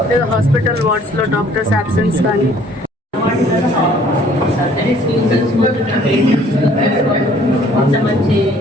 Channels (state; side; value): normal; both; correlation 0.57